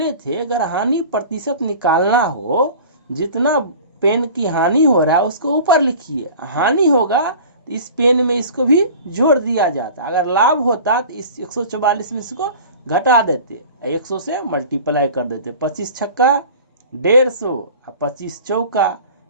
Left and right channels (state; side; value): inverted; both; correlation -0.41